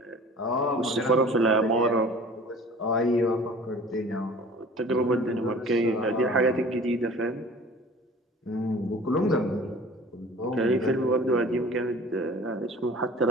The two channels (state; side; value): normal; both; correlation 0.45